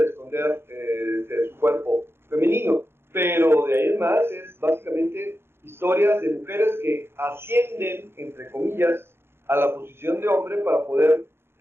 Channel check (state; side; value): late; left; 0.12 ms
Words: esconder de su cuerpo femenino. Pero de ahí en más es básicamente historias de mujeres que ascienden, entre comillas, a la posición de hombre para poder